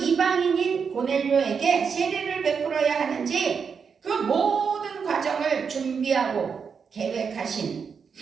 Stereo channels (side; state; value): left; quieter; 6.1 dB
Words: 고넬료에게 세례를 베풀어야 하는지 그 모든 과정을 준비하고 계획하신